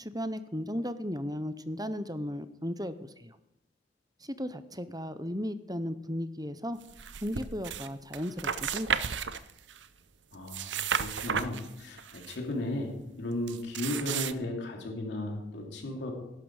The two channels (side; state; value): both; normal; correlation 0.51